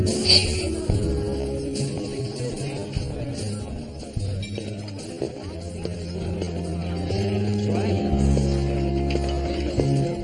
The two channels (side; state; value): both; identical; correlation 1.00